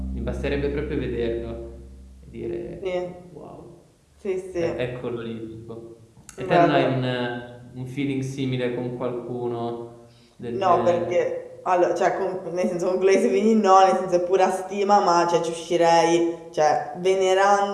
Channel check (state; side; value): identical; both; correlation 1.00